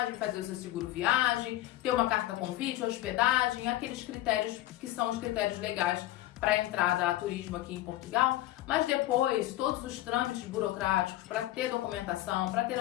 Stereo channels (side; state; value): right; quieter; 15.3 dB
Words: fazer o seu seguro viagem, ter uma carta convite, hospedagem, aqueles critérios que são os critérios legais para a entrada a turismo aqui em Portugal. Mas depois, todos os trâmites burocráticos para ter documentação, para ter